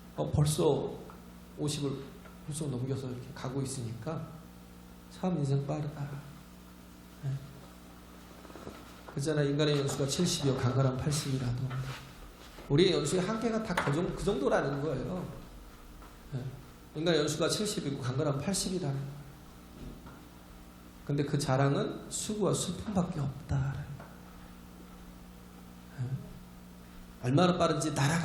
벌써 50을 벌써 넘겨서 이렇게 가고 있으니까 참 인생 빠르다. 그잖아, 인간의 연수가 70이요 강건한 80이라도 우리의 연수의 한계가 다 그 정도라는 거예요. 인간의 연수가 70이고 강건한 80이라는 거예요. 근데 그 자랑은 수고와 슬픔밖에 없다라는 거예요. 얼마나 빠른지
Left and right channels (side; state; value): both; identical; correlation 1.00